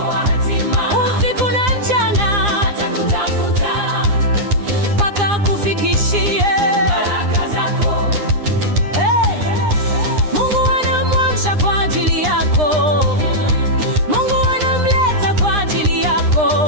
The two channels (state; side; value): late; left; 9.8 ms